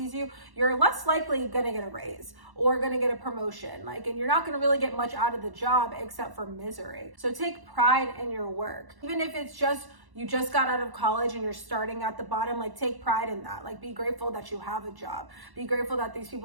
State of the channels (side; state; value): left; late; 1.1 ms